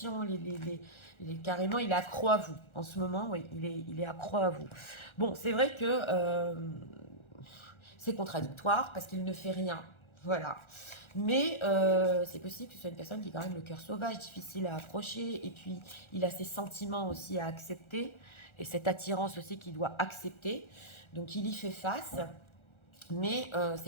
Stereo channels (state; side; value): late; right; 1.4 ms